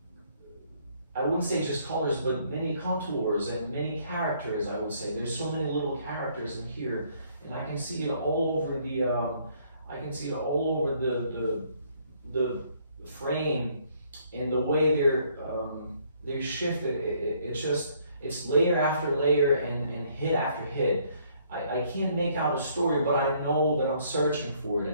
I wouldn't say just colors, but many contours and many characters. I would say there's so many little characters in here, and I can see it all over the. I can see it all over the frame, and the way they're shifted. It's layer after layer and hit after hit. I can't make out a story, but I know that I'm searching for it,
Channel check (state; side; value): inverted; both; correlation -0.65